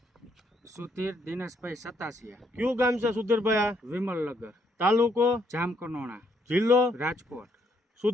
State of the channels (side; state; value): both; normal; correlation 0.72